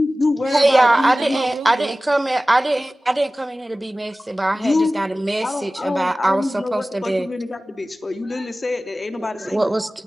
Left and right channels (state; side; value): normal; both; correlation 0.97